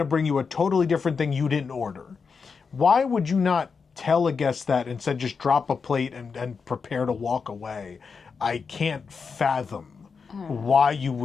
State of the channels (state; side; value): quieter; right; 5.4 dB